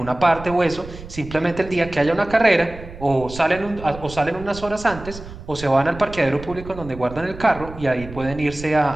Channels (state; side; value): noise; right; rumble, 14 dB below the sound